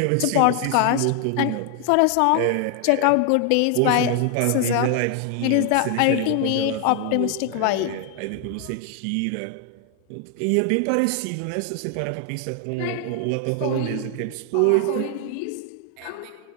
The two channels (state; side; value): different; both; correlation 0.00